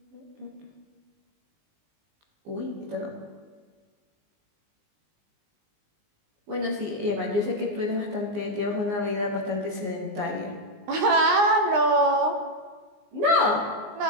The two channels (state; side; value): late; left; 19 ms